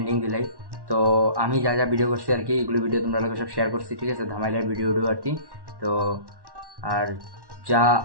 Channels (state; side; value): late; left; 1.1 ms